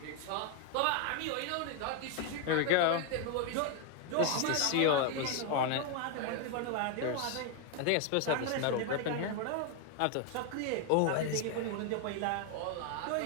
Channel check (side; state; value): both; different; correlation 0.01